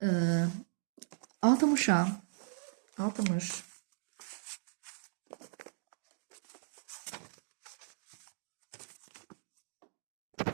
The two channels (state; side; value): silent; left; digital silence